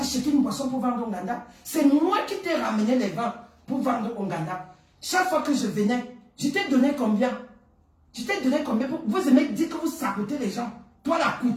acheté une boisson pour vendre au ganda. C'est moi qui t'ai ramené les vins pour vendre au ganda. Chaque fois que je venais, je t'ai donné combien? Je t'ai donné combien? Vous aimez dire que vous sabotez les gens. Toi la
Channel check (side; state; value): both; identical; correlation 1.00